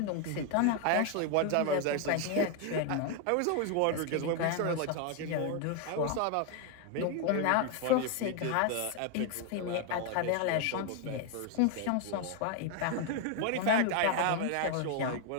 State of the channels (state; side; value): different; both; correlation 0.01